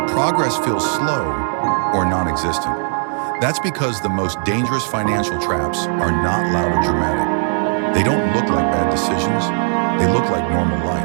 progress feels slow or non-existent. That's because the most dangerous financial traps are not loud or dramatic. They don't look like bad decisions, they look like normal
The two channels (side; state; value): left; silent; digital silence